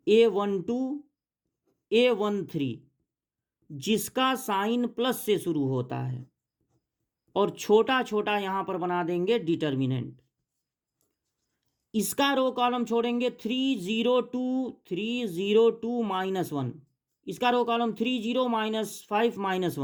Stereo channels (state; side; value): identical; both; correlation 1.00